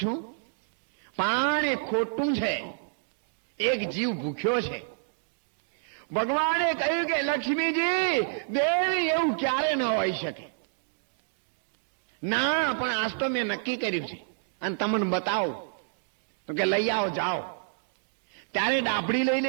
છું, પણ એ ખોટું છે, એક જીવ ભૂખ્યો છે. ભગવાને કહ્યું કે લક્ષ્મીજી દેવી એવું ક્યારે ન હોઈ શકે. ના, પણ આજ તો મેં નક્કી કર્યું છે અને તમને બતાવો. તો કે લઈ આવો, જાઓ. ત્યારે ડાભડી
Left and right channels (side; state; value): left; silent; digital silence